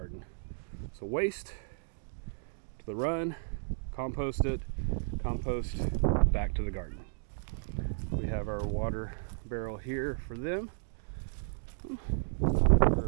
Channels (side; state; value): left; silent; digital silence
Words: So waste to the run, compost it, compost back to the garden. We have our water barrel here for them,